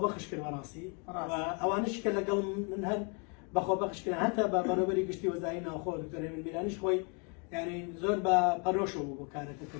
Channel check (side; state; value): right; quieter; 35.8 dB